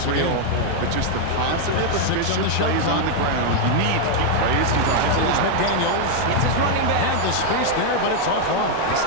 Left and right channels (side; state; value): both; different; correlation 0.00